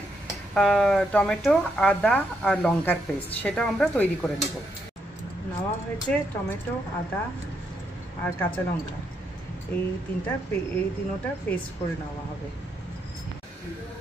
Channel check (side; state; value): both; normal; correlation 0.78